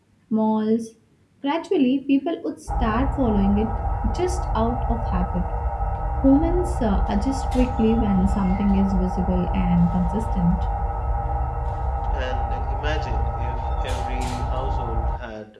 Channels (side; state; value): both; identical; correlation 1.00